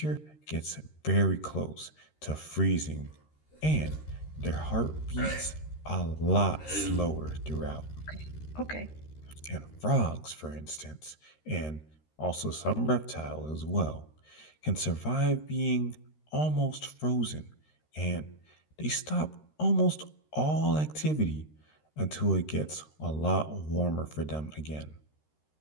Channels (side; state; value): right; late; 13 ms